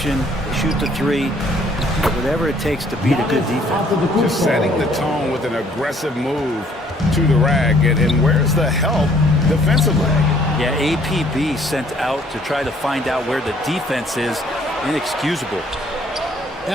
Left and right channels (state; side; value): normal; both; correlation 0.61